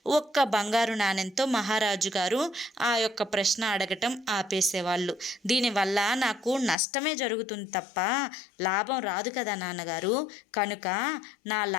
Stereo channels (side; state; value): right; drops out; at 6.8 s